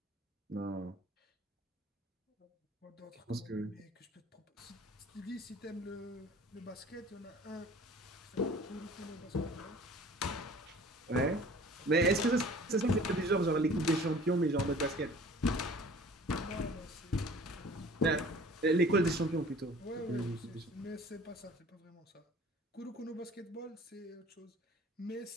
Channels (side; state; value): both; normal; correlation 0.47